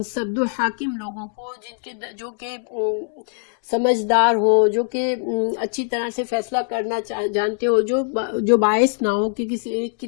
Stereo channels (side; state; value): right; silent; 64 dB below the other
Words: دو حاکم لوگوں کو، جو کہ سمجھدار ہو، جو کہ اچھی طرح سے فیصلہ کرنا جانتے ہو، جو باعث نہ ہو کہ کسی ایک کی